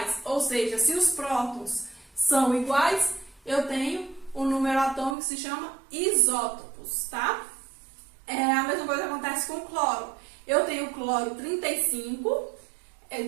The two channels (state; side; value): drops out; left; at 5.2 s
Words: ou seja, se os prótons são iguais, eu tenho um número atômico que se chama isótopos, tá? A mesma coisa acontece com o cloro. Eu tenho o cloro 35,